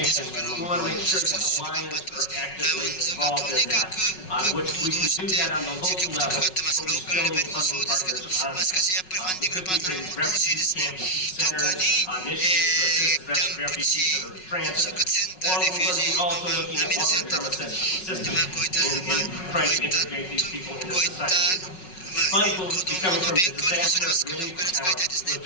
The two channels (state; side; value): late; right; 5.4 ms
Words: We want to make sure that the Lions are actively involved in that, which we can do that on the local level, but we're still need funding partners on it. We could be creating refugee camps, centers, initiatives to assist refugees that are transit, or we're also looking at longer-term assistance in trying to integrate these people into society. Funds will be coming from the disaster relief account